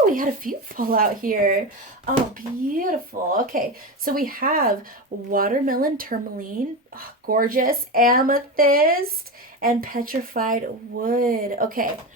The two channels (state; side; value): normal; both; correlation 0.20